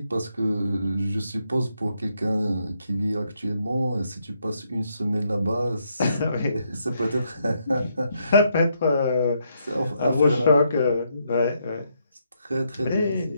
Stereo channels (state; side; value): inverted; both; correlation -0.77